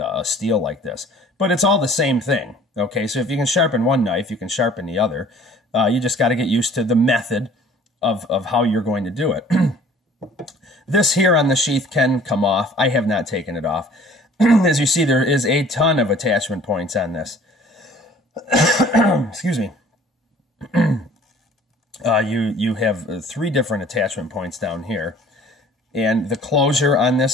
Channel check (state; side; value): normal; both; correlation 0.51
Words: steel like this. But it's all the same thing. Okay, so if you can sharpen one knife, you can sharpen the other. You just got to get used to the method of how you're going to do it. This here on the sheath can come off. I have not taken it off. As you see, there is a ton of attachment points on this. Excuse me. You have 3 different attachment points down here, and the closure on